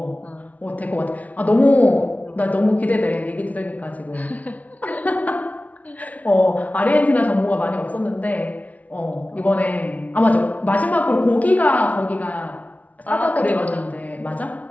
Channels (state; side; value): late; right; 0.070 ms